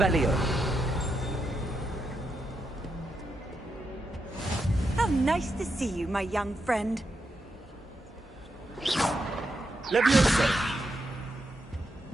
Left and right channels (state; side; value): normal; both; correlation 0.84